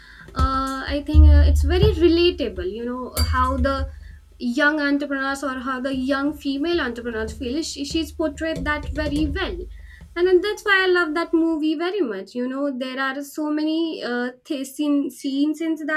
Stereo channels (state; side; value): identical; both; correlation 1.00